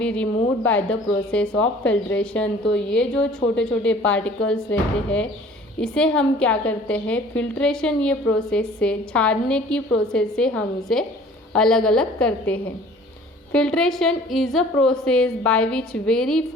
removed bye the process of filtration. तो ये जो छोटे छोटे पार्टिकल्स रहते हैं इसे हम क्या करते हैं, फिल्ट्रेशन ये प्रोसेस से, छानने की प्रोसेस से हम इसे अलग अलग करते हैं। Filtration is a process by which very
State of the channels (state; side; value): normal; both; correlation 0.50